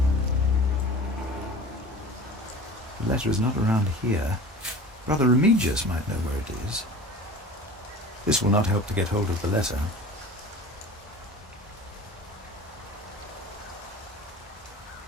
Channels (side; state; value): both; normal; correlation 0.39